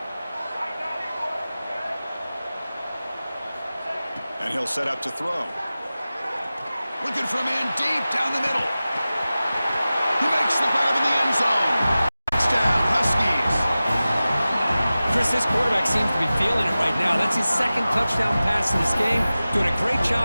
And he'll set up to throw. Looking for a man deep down the middle. He makes the grab in the end zone. Touchdown, Huskies. Chris, this quarterback seems to be feeling it right now. That's his second touchdown pass in this game. Doing a great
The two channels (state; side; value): inverted; both; correlation -0.96